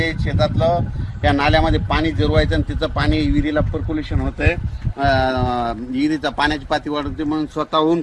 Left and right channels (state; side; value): identical; both; correlation 1.00